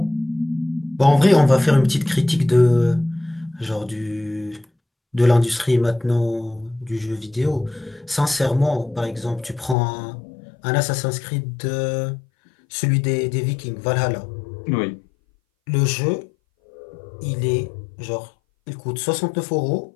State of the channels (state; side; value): drops out; right; at 9.8 s